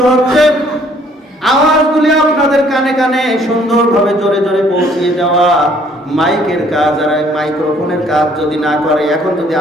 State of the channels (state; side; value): normal; both; correlation 0.61